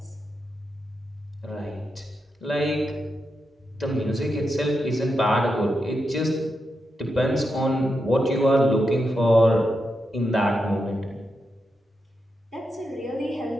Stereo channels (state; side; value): normal; both; correlation 0.86